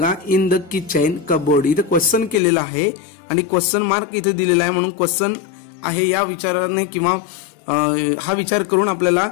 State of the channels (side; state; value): right; drops out; at 2.4 s